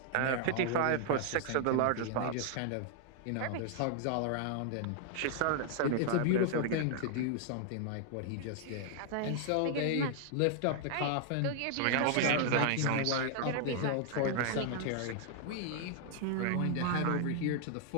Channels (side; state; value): both; different; correlation 0.00